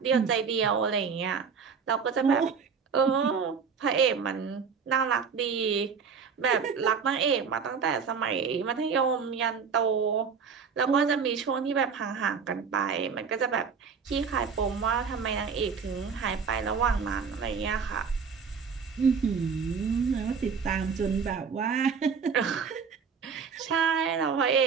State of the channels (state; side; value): quieter; left; 6.0 dB